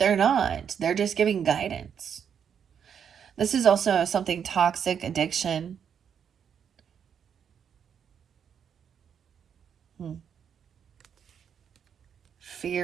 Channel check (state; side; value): quieter; left; 7.8 dB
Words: not. They're just giving guidance. This is also something toxic, addiction. Hmm.